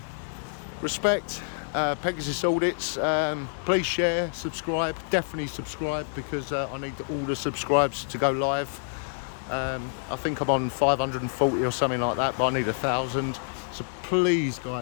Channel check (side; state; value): right; silent; digital silence